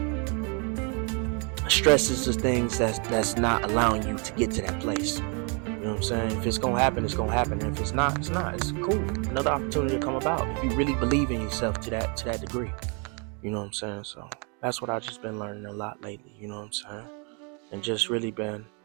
stress is the things that's not allowing you to get to that place. You know what I'm saying? If it's gonna happen, it's gonna happen. And if it's not, it's not. It's cool. Another opportunity to come about if you really believe in yourself to that degree. You know what I'm saying? So that's what I've just been learning a lot lately. You know what I'm saying? And just really been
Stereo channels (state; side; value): quieter; left; 35.6 dB